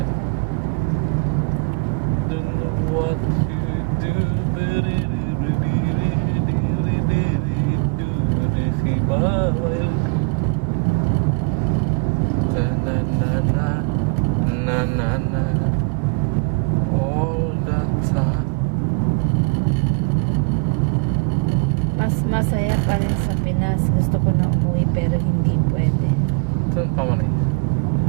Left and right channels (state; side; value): quieter; left; 29.3 dB